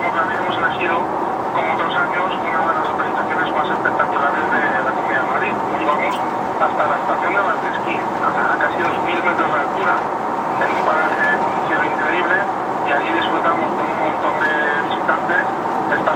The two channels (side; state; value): both; identical; correlation 1.00